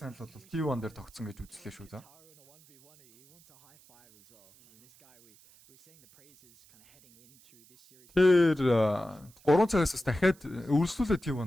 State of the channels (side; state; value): right; noise; hiss, 28 dB below the sound